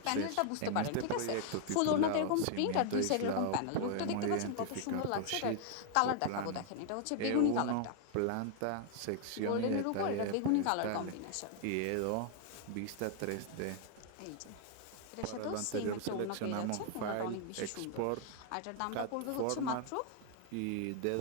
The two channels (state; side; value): different; both; correlation 0.00